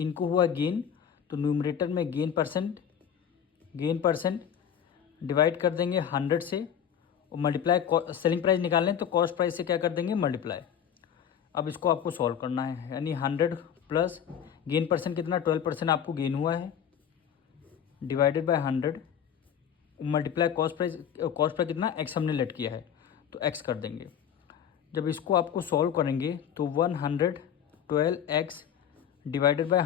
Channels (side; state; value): right; quieter; 8.7 dB